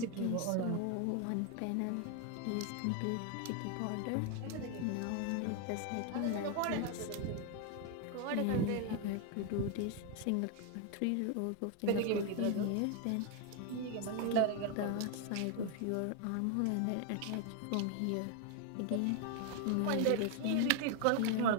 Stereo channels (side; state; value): both; different; correlation 0.01